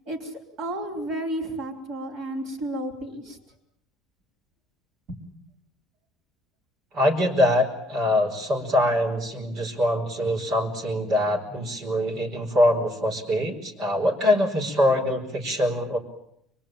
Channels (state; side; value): normal; both; correlation 0.68